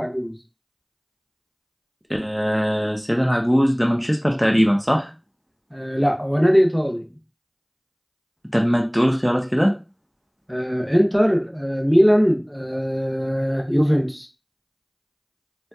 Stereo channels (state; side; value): identical; both; correlation 1.00